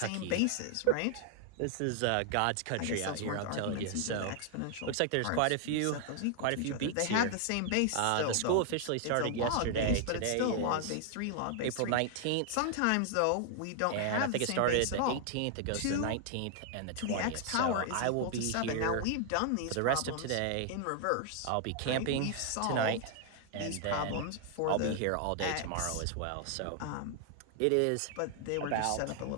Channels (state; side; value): different; both; correlation 0.00